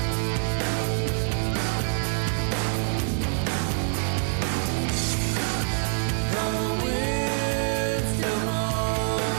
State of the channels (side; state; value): left; silent; 61 dB below the other